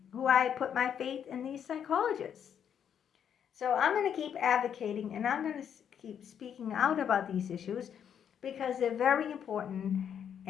who I put my faith in these psychologists. So I'm going to keep advocating, and I'm going to keep speaking out about these issues because they're very important,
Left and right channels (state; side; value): quieter; right; 8.5 dB